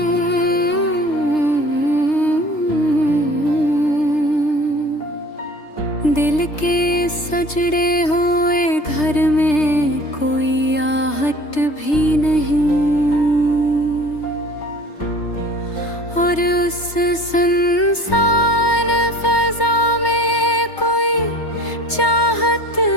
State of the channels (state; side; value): late; right; 3.3 ms